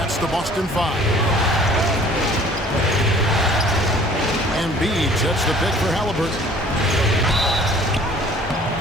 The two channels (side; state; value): both; normal; correlation 0.52